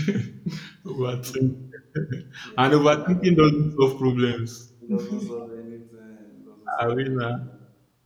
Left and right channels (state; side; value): identical; both; correlation 1.00